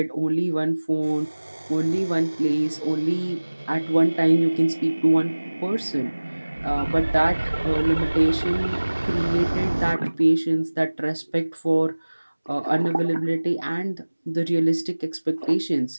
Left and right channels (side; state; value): both; inverted; correlation -1.00